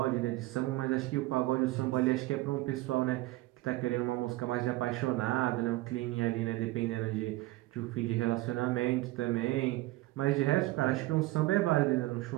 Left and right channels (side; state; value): left; quieter; 18.6 dB